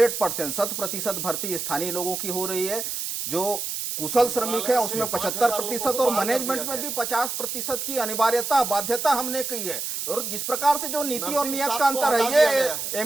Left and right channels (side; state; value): right; noise; hiss, 4 dB below the sound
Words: 100% भर्ती स्थानीय लोगों की हो रही है। जो कुशल श्रमिक है उसमें 75% और मैनेजमेंट में भी 50% की अनिवार्यता, बाध्यता हमने की है। और जिस प्रकार से जो नीति और नियत का अंतर है, ये